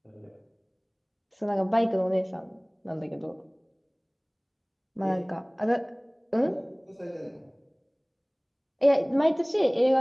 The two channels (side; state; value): both; identical; correlation 1.00